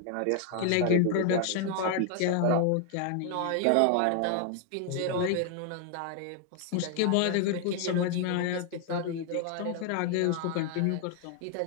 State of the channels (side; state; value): both; different; correlation 0.00